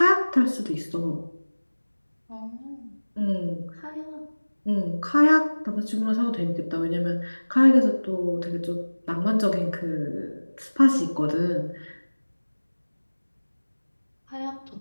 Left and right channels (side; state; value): both; inverted; correlation -1.00